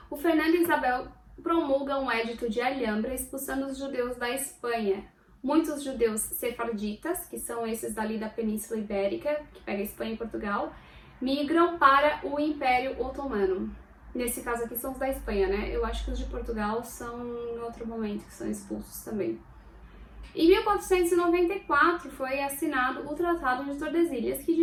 O Fernando Isabel promulga um édito de Alhambra expulsando os judeus da Espanha. Muitos judeus sefarditas, que são esses dali da Península Ibérica, que pega Espanha e Portugal, migram para o Império Otomano. Nesse caso aqui são os da Espanha, né? Eu acho que os de Portugal são em outro momento, que são expulsos também. Em 1494 foi assinado o Tratado de Tordesilhas, que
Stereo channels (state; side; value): identical; both; correlation 1.00